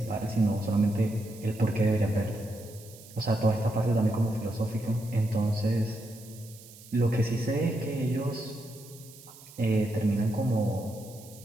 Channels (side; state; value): right; noise; hiss, 20 dB below the sound